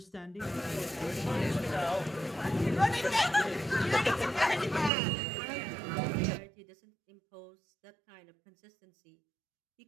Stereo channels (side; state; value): left; drops out; at 4.9 s